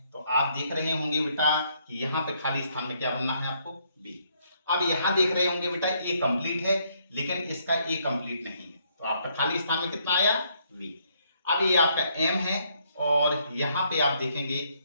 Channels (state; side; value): inverted; both; correlation -0.71